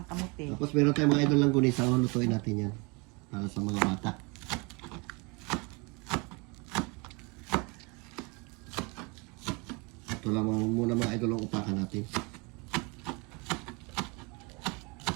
kamuti. Tapos meron tayong mga idol lang gunisa. Lutuin natin yan. Para sa mga bata. Ito lang muna mga idol ang upakan natin.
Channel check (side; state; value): left; quieter; 29.2 dB